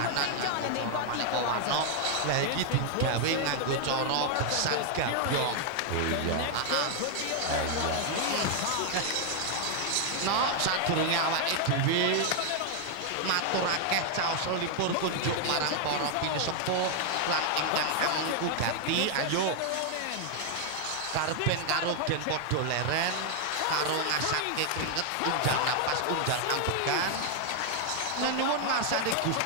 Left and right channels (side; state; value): both; different; correlation 0.00